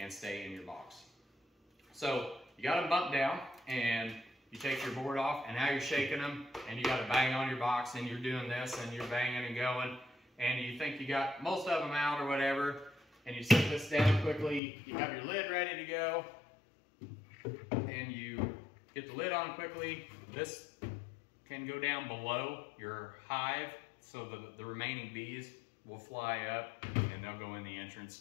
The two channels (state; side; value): drops out; right; at 14.6 s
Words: stay in your box. So you got them bumped down, and you take your board off, and now you're shaking them, and you got to bang on your box, and you're doing this, and you're banging and going, and you think you got most of them out or whatever, and you set this down quickly. You have your lid ready to go, and you get the lid on quickly. This can go down below your hive, so the remaining bees will fly up, and they'll go in the